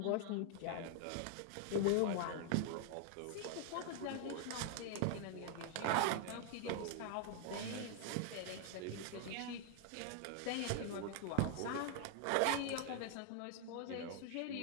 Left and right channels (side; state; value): both; different; correlation 0.00